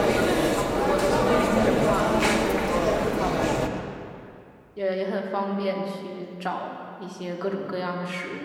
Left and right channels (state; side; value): identical; both; correlation 1.00